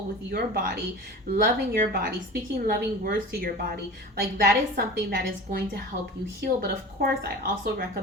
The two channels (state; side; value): normal; both; correlation 0.36